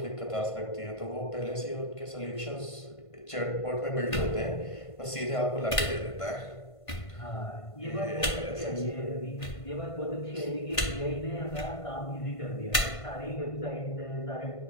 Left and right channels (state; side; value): late; right; 1.5 ms